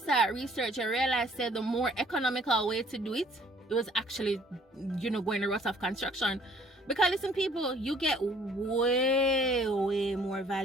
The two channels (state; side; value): normal; both; correlation 0.58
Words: research, you realize that the more economical way to do it was actually, going the route of construction. Because listen, people, you get way more